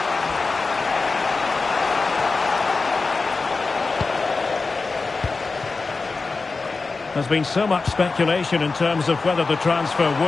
There's been so much speculation in terms of whether the transfer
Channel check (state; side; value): quieter; right; 4.1 dB